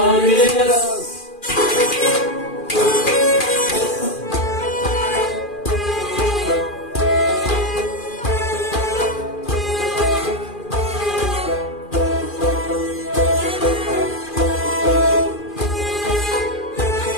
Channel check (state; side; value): late; right; 2.4 ms